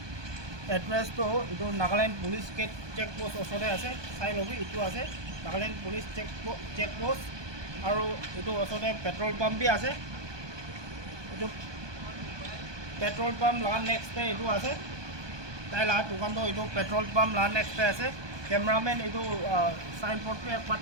এড্ৰেছটো এইটো নাগালেণ্ড পুলিচ চেক পোষ্ট ওচৰতে আছে চাই ল'বি এইটো আছে নাগালেণ্ড পুলিচ চেক পোষ্ট আৰু এইটো ওচৰতে পেট্ৰল পাম্প বি আছে এইটো পেট্ৰল পাম্প লগা নেক্সটে এইটো আছে তাই লগা দোকানটো এইটো পেট্ৰল পাম্প লগা নেক্সটে আছে কেমেৰামেন এইটো সাইনবোৰ্ডটো একবাৰ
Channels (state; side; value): late; left; 1.2 ms